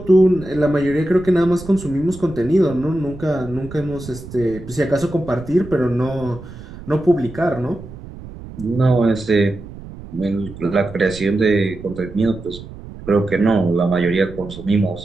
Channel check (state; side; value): noise; right; rumble, 14 dB below the sound